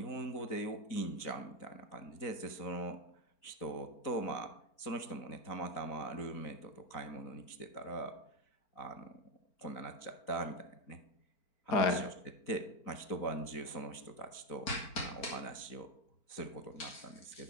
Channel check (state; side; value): late; right; 4.4 ms